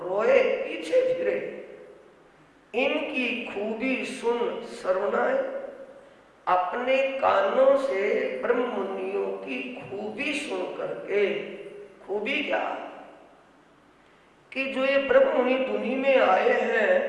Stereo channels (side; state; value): both; identical; correlation 1.00